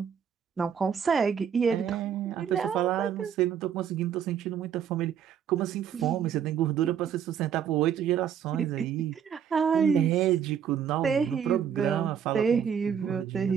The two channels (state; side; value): quieter; left; 8.3 dB